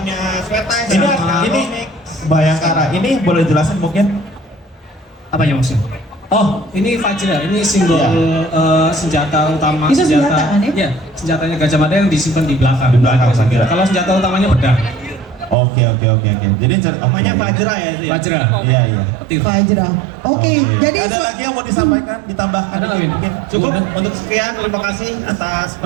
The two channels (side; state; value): left; drops out; at 15.6 s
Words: Sweta. Ini Bayangkara. Ini boleh jelasin mungkin? Apa yang maksudnya? Oh, ini Vajra, ini simbol senjata utama. Itu senjata kan ya? Iya, senjatanya Gajah Mada yang disimpan di belakang. Di belakang, saya kira. Kalau senjata utamanya pedang. Oke. Jadi Namanya Fajra ya itu ya. Vajra. Iya, iya. Petir. Fajra. Oke, jadi ada lagi yang mau disampaikan, ditambahkan Ada, Win? mungkin? Cukup untuk sekian, terima kasih atas